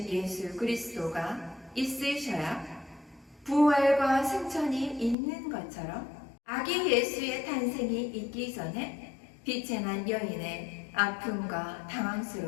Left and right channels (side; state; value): right; drops out; at 5.2 s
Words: 예수 그리스도가 있으셔야 부활과 승천이 있는 것처럼 아기 예수의 탄생이 있기 전에 빛의 난 여인의 아픔과